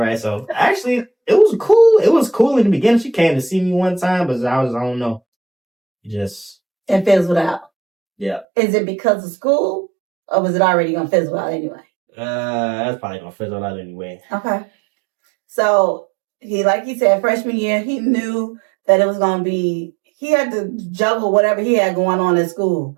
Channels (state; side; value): drops out; left; at 8.5 s